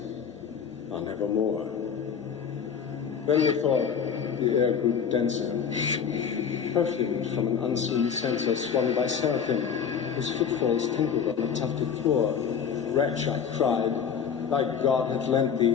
on evermore. Then methought the air grew denser, perfumed from an unseen censer swung by seraphim, whose footfalls tinkled on the tufted floor. Wretch, I cried, thy God hath lent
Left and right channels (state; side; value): quieter; right; 7.2 dB